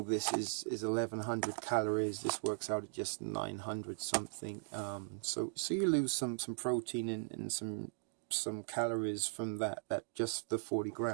this is 1100 calories. This works out at just 900 something. So you lose some protein and some calories from that just the 40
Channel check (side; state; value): left; silent; digital silence